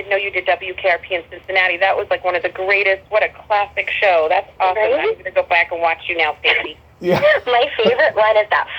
know you did WKRP in Cincinnati. That was like one of the greatest. What a classic show. That's awesome. Right? I'm going to go back and watch you now, Stacy. Yeah. My favorite one is that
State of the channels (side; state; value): both; identical; correlation 1.00